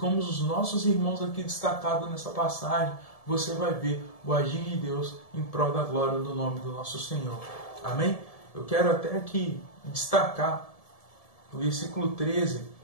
os nossos irmãos aqui destacados nessa passagem, você vai ver o agir de Deus em prol da glória do nome do nosso Senhor. Amém? Eu quero até aqui destacar o versículo 13,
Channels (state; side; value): late; right; 1.7 ms